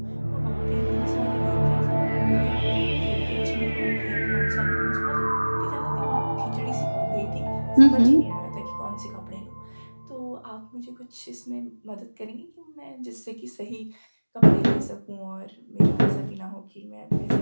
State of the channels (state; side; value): inverted; both; correlation -1.00